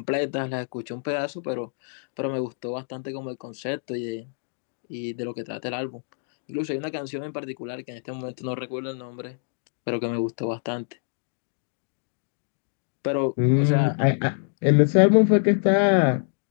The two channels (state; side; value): silent; right; digital silence